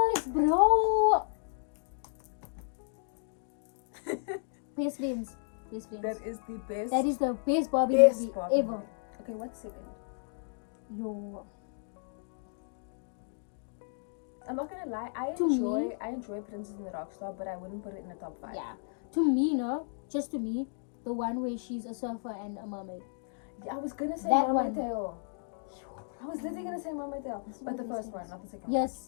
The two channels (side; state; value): right; silent; digital silence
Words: bro. Best friends. Best friends. That is the best. That is the best Barbie movie Barbie ever. movie. Okay, what's second? Yo. I'm not gonna lie. I To enjoy Princess and the Rockstar, but I wouldn't put it in the top 5. Yeah. To me, no. Just to me, the one where she's a surfer and a mermaid. Yeah, I was gonna say That Mermaid one. Tale. I was literally gonna say Mermaid Tale, This is but the my first best one, not the second